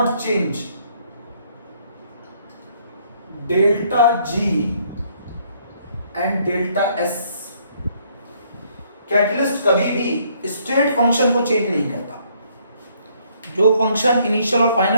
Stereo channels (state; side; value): inverted; both; correlation -0.66